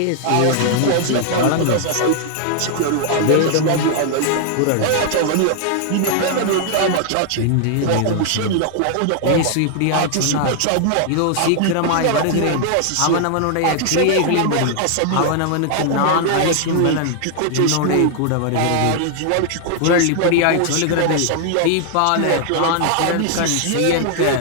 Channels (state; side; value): different; both; correlation 0.00